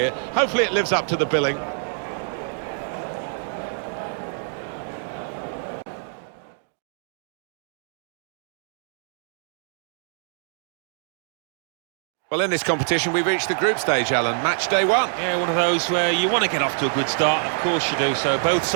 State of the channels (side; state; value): left; silent; digital silence